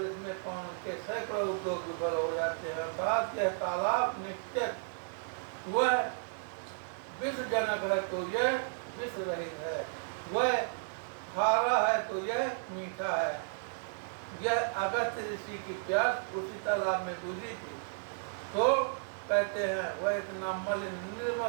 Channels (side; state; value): left; silent; digital silence